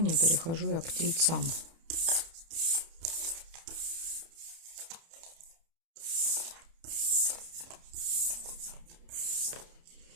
Перехожу я к Тельцам.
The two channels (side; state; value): left; late; 30 ms